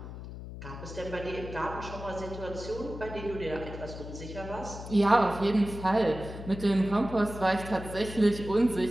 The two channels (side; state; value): left; noise; hum, 11 dB below the sound